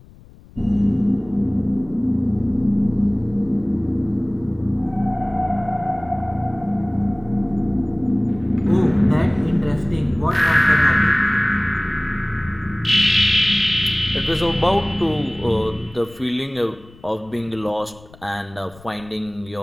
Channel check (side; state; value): left; noise; rumble, 23 dB below the sound